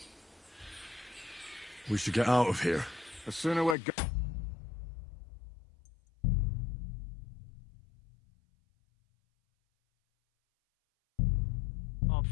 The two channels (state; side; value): drops out; right; at 3.8 s